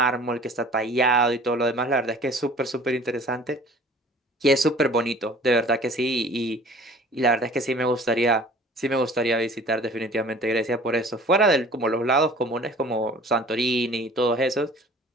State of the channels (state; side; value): normal; both; correlation 0.48